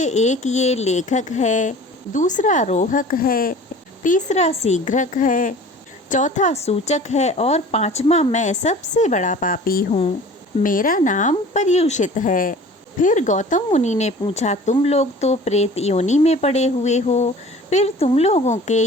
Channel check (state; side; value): normal; both; correlation 0.44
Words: एक ये लेखक है, दूसरा रोहक है, तीसरा शीघ्रक है, चौथा सूचक है और 5वां मैं सबसे बड़ा पापी हूँ। मेरा नाम पर्युषित है। फिर गौतम मुनि ने पूछा, तुम लोग तो प्रेत योनि में पड़े हुए हो, फिर तुम लोगों के